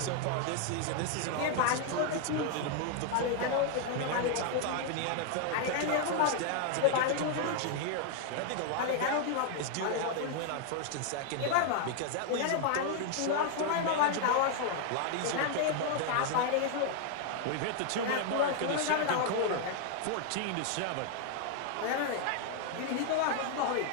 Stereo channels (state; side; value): different; both; correlation 0.00